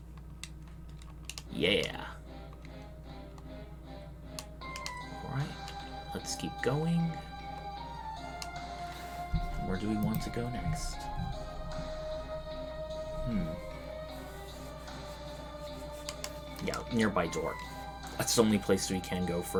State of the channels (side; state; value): both; identical; correlation 1.00